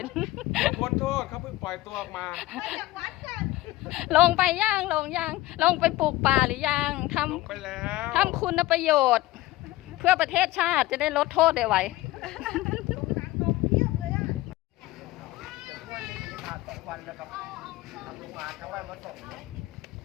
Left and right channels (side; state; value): right; quieter; 17.6 dB